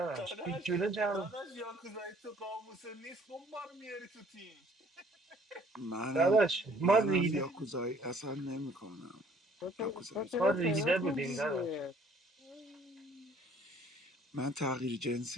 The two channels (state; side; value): normal; both; correlation 0.58